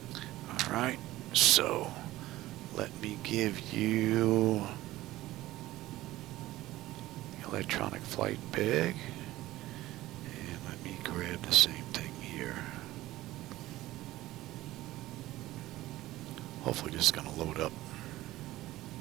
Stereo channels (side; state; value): left; quieter; 16.5 dB